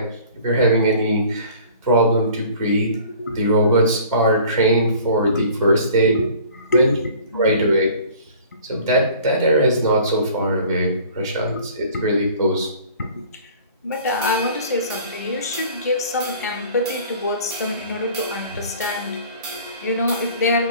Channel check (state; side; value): inverted; both; correlation -0.48